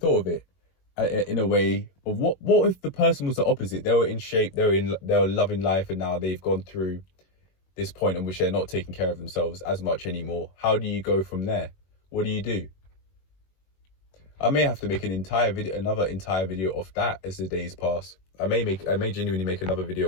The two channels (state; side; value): late; right; 21 ms